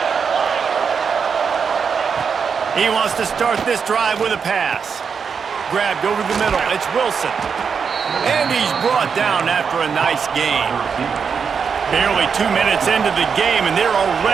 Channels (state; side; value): quieter; left; 6.2 dB